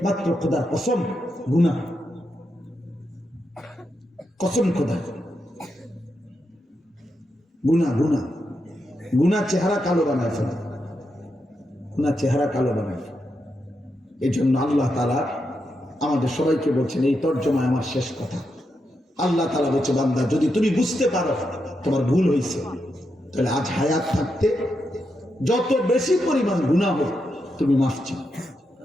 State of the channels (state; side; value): normal; both; correlation 0.84